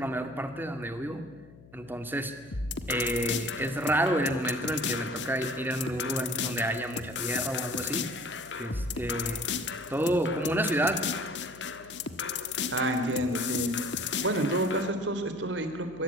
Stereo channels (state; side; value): noise; left; hum, 22 dB below the sound